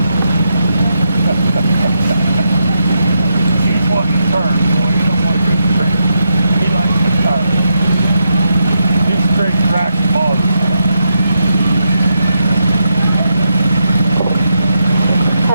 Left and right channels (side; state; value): both; inverted; correlation -0.83